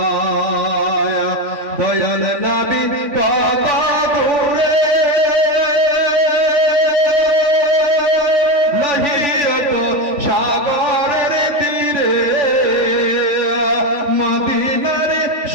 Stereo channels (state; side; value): late; left; 3.5 ms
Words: দয়াল নবী কত দূরে মহিয়ত সাগরের তীরে মদিনার